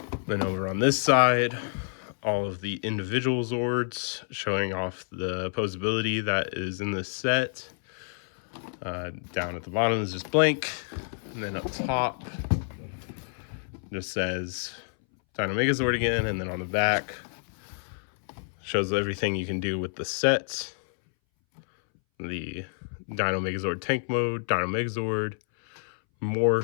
Then over on this side, all of the individual Zords showing off the posability that is in this set. Down at the bottom is just blank, and then up top just says Dino Megazord again, and then on the back shows everything you can do with the set. The Dino Megazord tank mode, Dino Megazord,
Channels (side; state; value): right; silent; 59 dB below the other